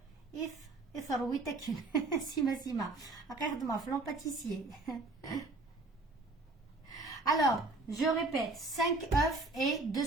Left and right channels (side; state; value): left; quieter; 3.2 dB